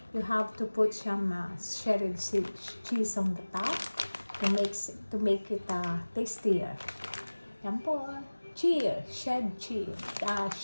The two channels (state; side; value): inverted; both; correlation -1.00